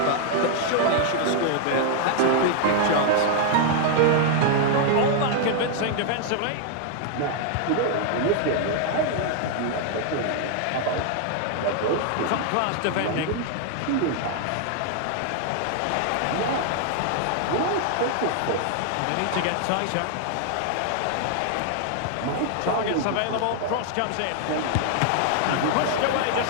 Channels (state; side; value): different; both; correlation 0.00